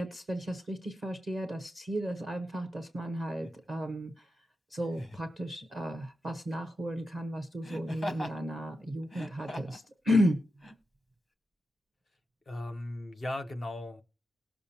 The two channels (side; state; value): both; normal; correlation 0.89